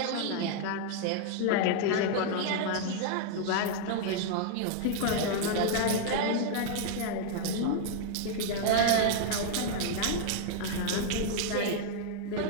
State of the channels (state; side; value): different; both; correlation 0.00